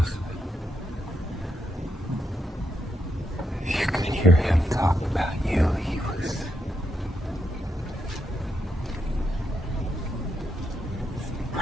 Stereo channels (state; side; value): normal; both; correlation 0.80